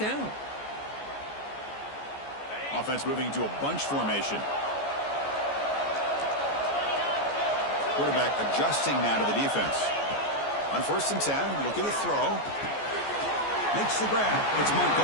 down. Offense moving to a bunch formation. Quarterback adjusting now to the defense. On 1st and 10, looking to throw. Makes the grab. It's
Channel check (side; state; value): right; late; 14 ms